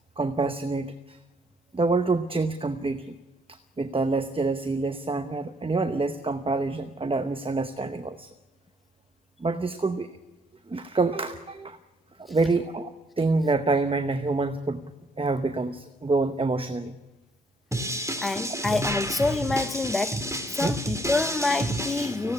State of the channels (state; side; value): normal; both; correlation 0.68